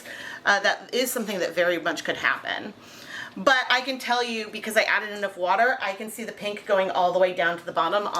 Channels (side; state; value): both; identical; correlation 1.00